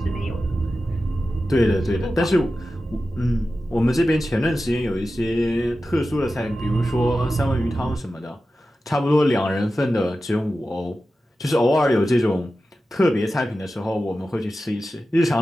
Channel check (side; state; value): both; normal; correlation 0.93